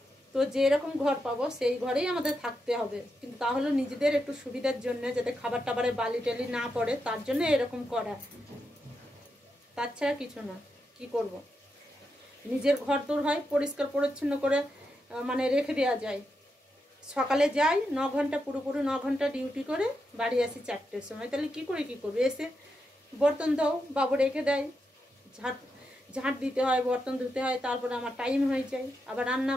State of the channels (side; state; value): both; normal; correlation 0.85